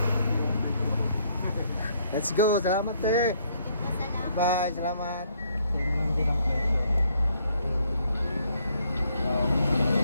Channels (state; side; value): inverted; both; correlation -0.68